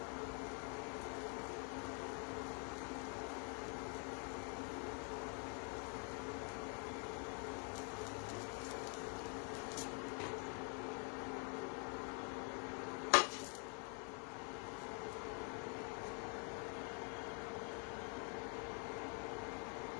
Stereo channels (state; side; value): quieter; right; 39.5 dB